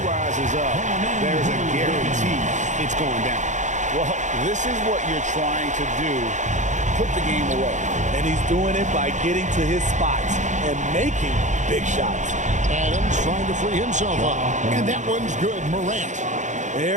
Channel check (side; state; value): left; late; 0.35 ms